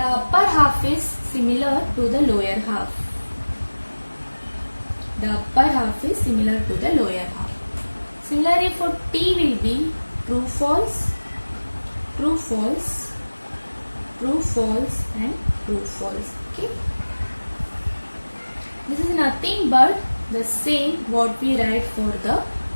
upper half is similar to the lower half. The upper half is similar to the lower half. Similarly, for T will be true, false, true, false, true, false and true, false. Okay. This is nothing but the same what we write for the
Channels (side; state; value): both; inverted; correlation -1.00